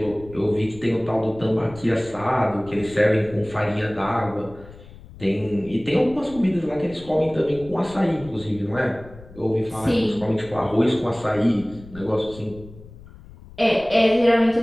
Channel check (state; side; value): noise; left; rumble, 19 dB below the sound